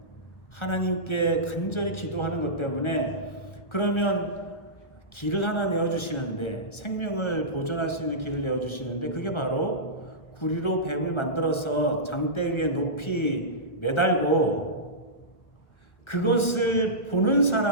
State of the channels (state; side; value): late; right; 1.6 ms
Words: 하나님께 간절히 기도하는 것 때문에 그러면 길을 하나 내어주시는데 생명을 보존할 수 있는 길을 내어주시는데 그게 바로 구리로 뱀을 만들어서 장대 위에 높이 매달고 그것을 보는